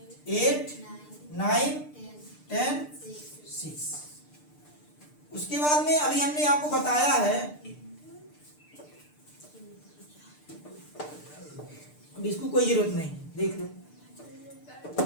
8, 9, 10, 6। उसके बाद में अभी हमने आपको बताया है, इसको कोई जरूरत नहीं, देख लो।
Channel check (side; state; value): right; late; 6.7 ms